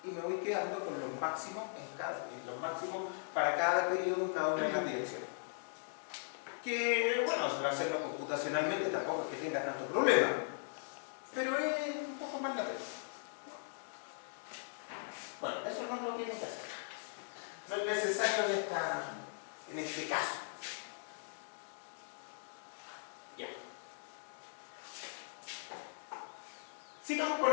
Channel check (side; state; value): right; silent; digital silence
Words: Y me voy quedando con los máximos, los máximos para cada periodo en cada una de las direcciones. Que, bueno, hacerlo computacionalmente tampoco es que tenga tanto problema, pero es un poco más latente. Bueno, eso no lo tienen que hacer. No es necesario en este caso. Ya. Sigamos con